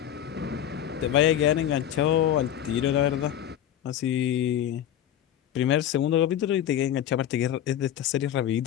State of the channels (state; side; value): quieter; right; 10.7 dB